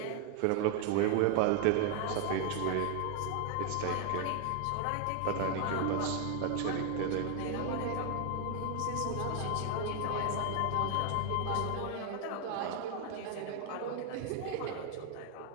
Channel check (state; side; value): different; both; correlation 0.00